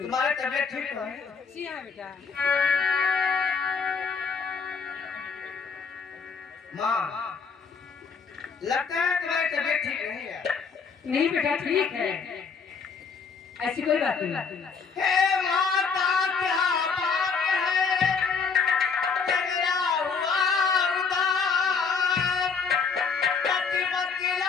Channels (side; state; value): right; quieter; 5.5 dB